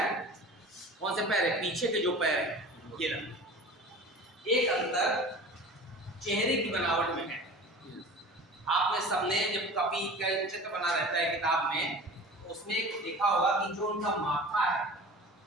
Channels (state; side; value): normal; both; correlation 0.39